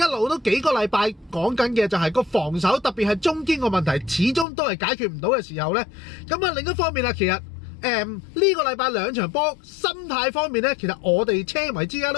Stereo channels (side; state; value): right; drops out; at 4.5 s